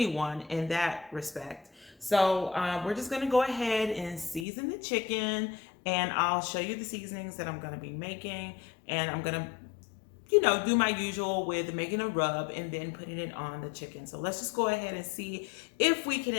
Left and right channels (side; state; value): right; drops out; at 4.5 s